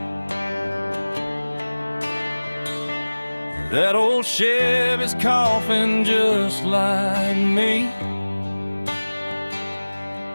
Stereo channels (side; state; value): both; inverted; correlation -1.00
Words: That old Chevy's coughing just like me.